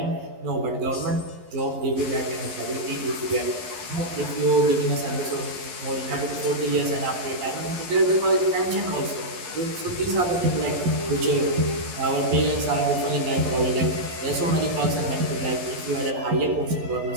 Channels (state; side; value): late; left; 11 ms